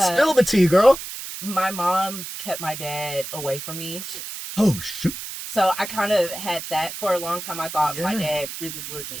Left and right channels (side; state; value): right; noise; hiss, 9 dB below the sound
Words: the tea, girl. My mom kept my dad away from me. Oh, shoot. So I kind of had that for a long time. I thought my dad really